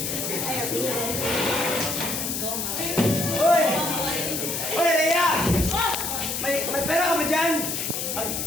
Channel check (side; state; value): left; noise; hiss, 2 dB below the sound